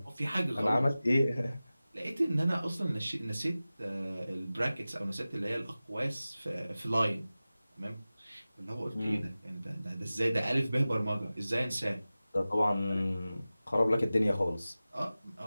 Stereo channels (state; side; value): inverted; both; correlation -0.96